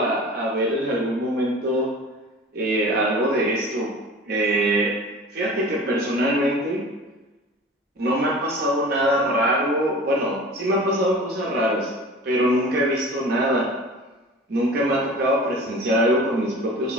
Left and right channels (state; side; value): normal; both; correlation 0.40